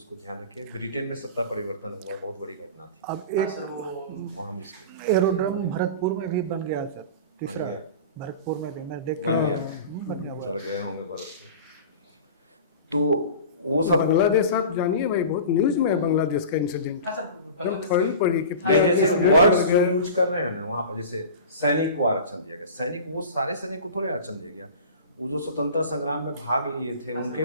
ध्यान रखिए। ब्रिटेन में सत्ता परिवर्तन हुआ, बहुत बड़ी घटना थी। अब हाँ एक सर, वो और हम इसके एरोड्रम भरतपुर में भी बन गया सर, तीसरा गया। भरतपुर में भी मैं देख बन गया। बन गया हुआ चल है। गए होंगे भारत। तो वो सब बांग्लादेश आप जानिए भाई, बहुत न्यूज में है बांग्लादेश का इंसिडेंट। हाँ सर, मतलब थोड़ी पड़ी कि नहीं, जैसे वर्ड्स जो यूज कर रहे हैं ना वहाँ पर, जैसे सैनिक को आरक्षण दिया गया, सैनिक वो सारे सैनिक को थोड़े आरक्षण दिया गया, वो जो स्वतंत्रता संग्राम में भाग लिए थे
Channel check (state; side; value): inverted; both; correlation -0.35